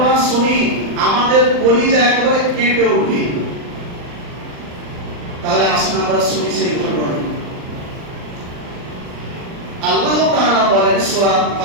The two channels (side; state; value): left; late; 39 ms